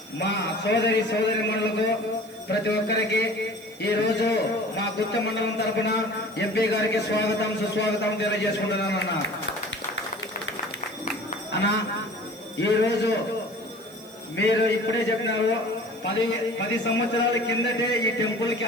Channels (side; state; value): right; noise; hiss, 23 dB below the sound